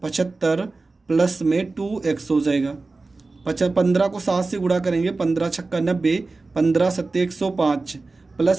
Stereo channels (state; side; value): quieter; left; 3.6 dB